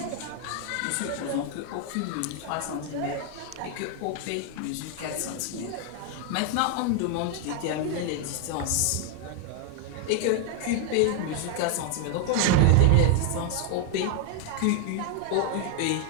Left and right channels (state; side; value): different; both; correlation 0.00